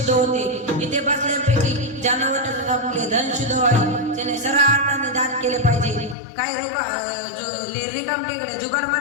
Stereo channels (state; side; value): drops out; right; at 6.2 s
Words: होते. इथे बसल्यापैकी ज्यांना वाटत आपले धन शुद्ध व्हावे त्याने सर्व अर्थाने दान केले पाहिजे. काही रिकाम टेकडे जुगाड